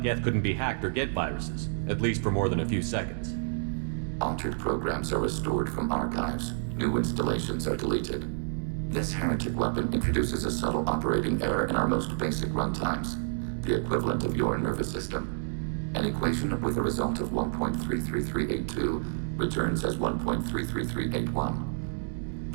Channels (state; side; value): silent; left; digital silence